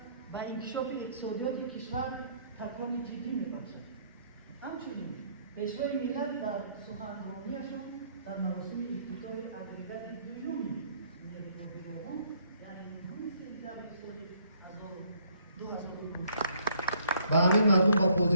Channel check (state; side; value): inverted; both; correlation -0.65